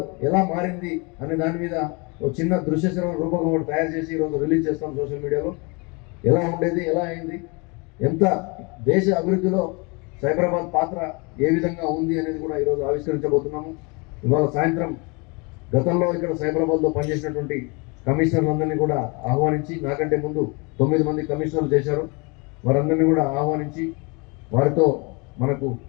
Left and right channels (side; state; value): right; quieter; 30.1 dB